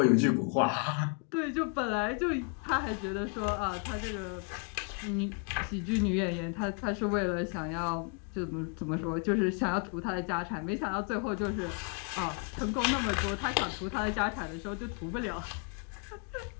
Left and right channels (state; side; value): quieter; right; 36.5 dB